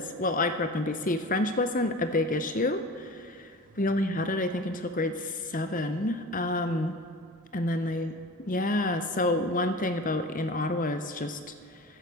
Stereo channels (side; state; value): both; normal; correlation 0.36